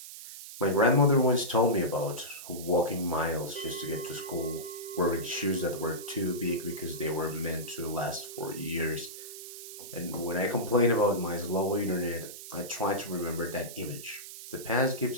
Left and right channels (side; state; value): right; noise; hiss, 12 dB below the sound